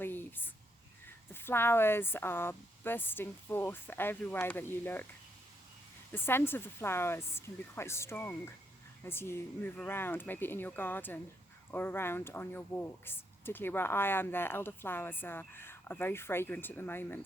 The flowers are bursting forth everywhere that you look. The scent of the flowers can be quite strong as you move around, maybe in your garden or around on your walks. Particularly where I am, the elderflowers are very fragrant at the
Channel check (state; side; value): normal; both; correlation 0.77